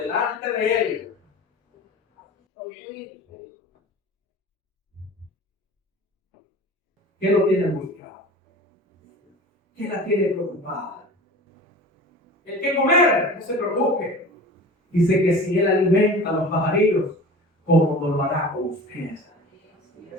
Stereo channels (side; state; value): both; normal; correlation 0.38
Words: de Él. ¿Qué lo tiene angustiado? ¿Qué la tiene preocupada? El que comer, no se preocupe. Dice que si Él alimenta a los pajarillos, ¿cómo no lo hará con ustedes?